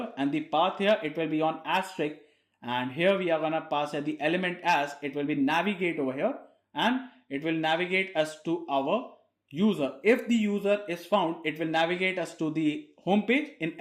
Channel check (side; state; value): both; identical; correlation 1.00